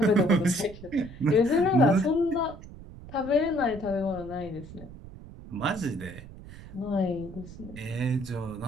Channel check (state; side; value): noise; right; rumble, 15 dB below the sound